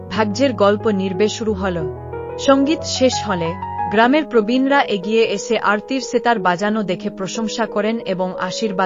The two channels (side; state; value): both; identical; correlation 1.00